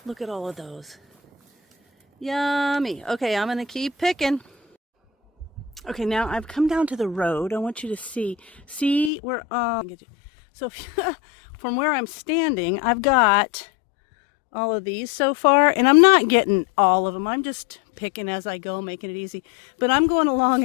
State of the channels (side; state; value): right; drops out; at 9.1 s